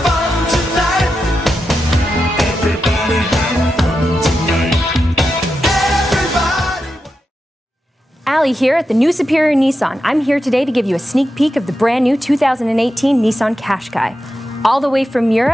fun tonight. Everybody have fun tonight. Everybody. Allie here at the new Superior Nissan. I'm here today to give you a sneak peek of the brand new 2018 Nissan Qashqai. All the way from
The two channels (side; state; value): both; normal; correlation 0.89